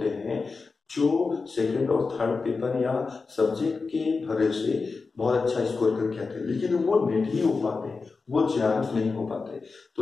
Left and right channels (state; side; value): quieter; right; 4.4 dB